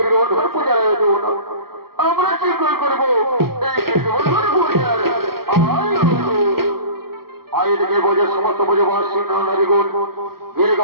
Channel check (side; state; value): left; late; 0.94 ms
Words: পূজার আয়োজন। আমরা শীঘ্র করবো এই গিরিগোবর্ধন পূজার আয়োজনে বোঝে সমস্ত বোঝবাসী নারীগণ